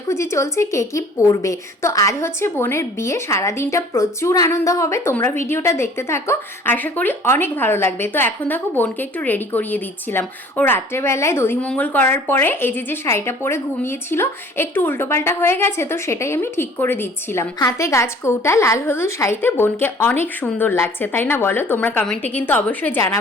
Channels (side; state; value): both; normal; correlation 0.51